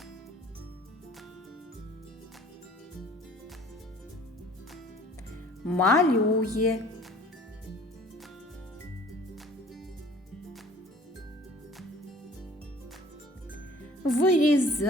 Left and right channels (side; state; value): both; normal; correlation 0.50